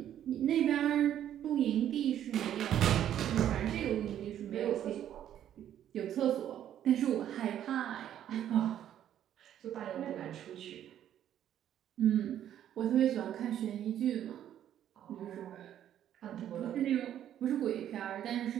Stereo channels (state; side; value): quieter; left; 10.8 dB